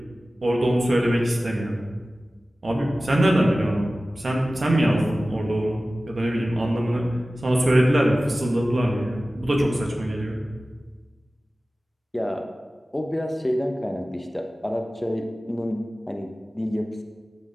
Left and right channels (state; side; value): normal; both; correlation 0.96